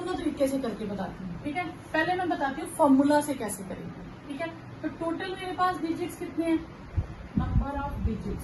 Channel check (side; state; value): both; identical; correlation 1.00